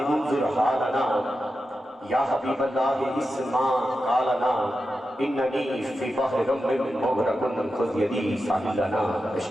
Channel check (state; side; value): normal; both; correlation 0.90